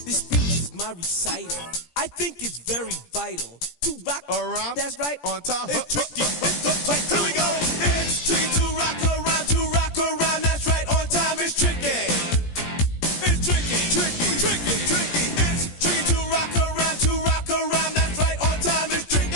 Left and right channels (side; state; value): right; late; 17 ms